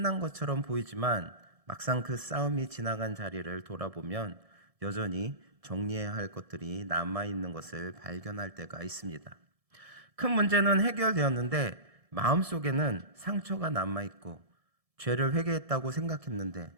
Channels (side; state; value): left; late; 1.7 ms